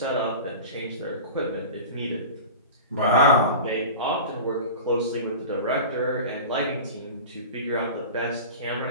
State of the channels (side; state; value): both; inverted; correlation -0.33